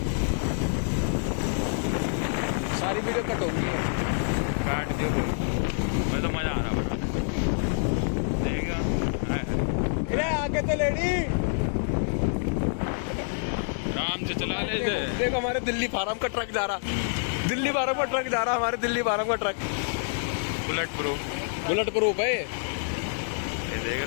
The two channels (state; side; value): silent; right; digital silence